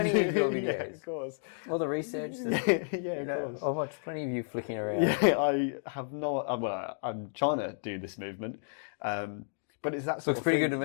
of your videos. Yeah, of course. All the research. Of course. I've watched plenty of you flicking around. Yeah, I have not. Well, I'm trying to do this movement. But it's that sort Looks of pretty thing. good to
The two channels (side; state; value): right; silent; digital silence